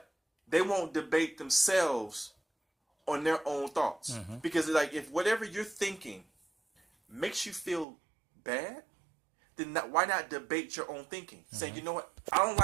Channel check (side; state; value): left; drops out; at 7.9 s